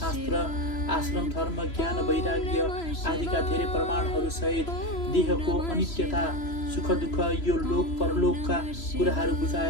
आश्रम धर्म ज्ञान वैराग्य आदिका धेरै प्रमाणहरू सहित देहको अनित्यता सुख दुःख यो लोक परलोकका कुराहरू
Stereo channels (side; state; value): right; late; 3.0 ms